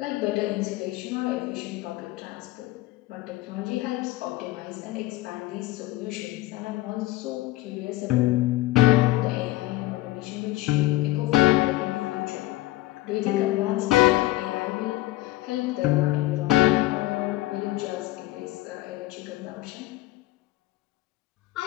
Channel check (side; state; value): right; quieter; 17.9 dB